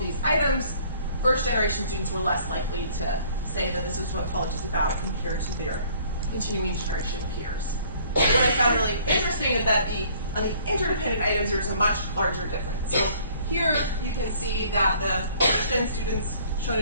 these items, first-generation students were less likely to say that this is what college is about compared to their continuing generation peers. What I found really interesting is that on the interdependent items, there's a much larger difference. So here you can see that the first-gen students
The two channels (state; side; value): inverted; both; correlation -0.57